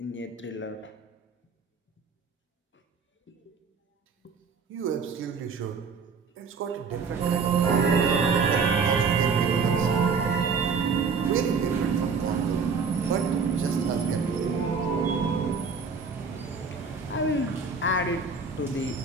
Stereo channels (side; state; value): left; quieter; 5.2 dB